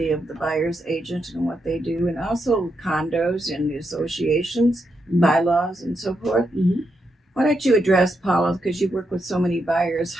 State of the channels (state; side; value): normal; both; correlation 0.83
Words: of the buyer's agent and what they do, and also condos and the associations, bylaws, and so forth. Mm-hmm. Why don't you address, Paula, because you work with so many buyers,